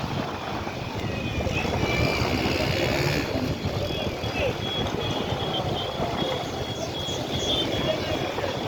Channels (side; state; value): both; identical; correlation 1.00